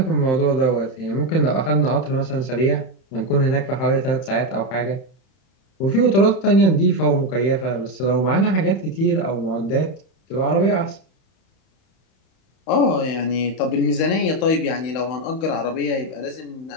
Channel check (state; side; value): late; right; 31 ms